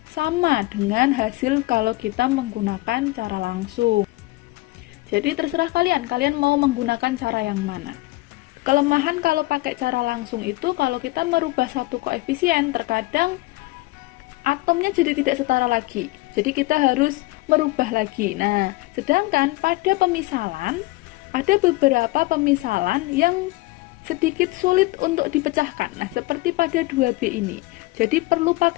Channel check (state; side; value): quieter; right; 20.6 dB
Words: sama dengan hasil kalau kita menggunakan cara langsung. Jadi terserah kalian mau menggunakan cara yang mana. Kelemahan kalau pakai cara langsung itu kalau kita merubah satu koefisien, terkadang atomnya jadi tidak setara lagi. Jadi kita harus merubah lagi. Nah, sedangkan pada pemisalan ada beberapa pemisalan yang sedikit sulit untuk dipecahkan. Nah, seperti pada 2B ini. Jadi perlu